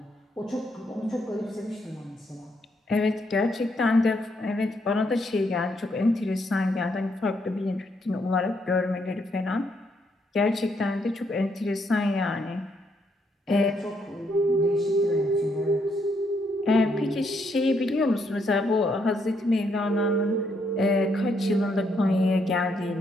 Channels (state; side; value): normal; both; correlation 0.75